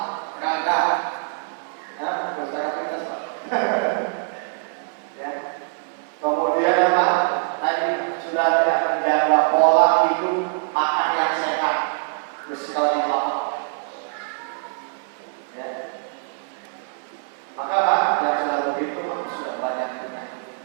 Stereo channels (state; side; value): silent; left; 59 dB below the other